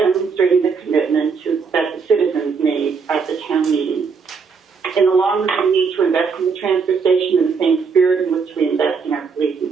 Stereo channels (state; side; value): quieter; left; 5.4 dB